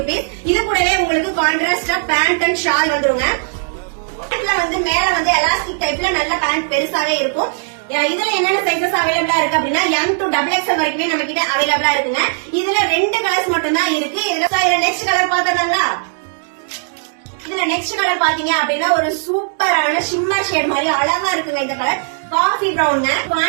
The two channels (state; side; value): silent; left; digital silence